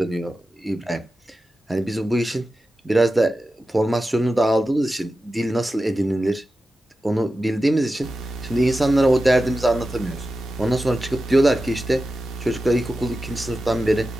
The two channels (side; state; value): both; normal; correlation 0.92